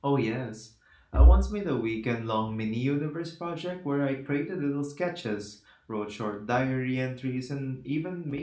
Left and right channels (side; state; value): both; identical; correlation 1.00